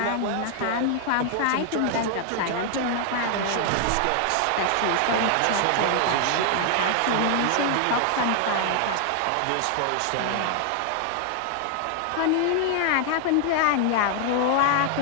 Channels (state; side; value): different; both; correlation 0.00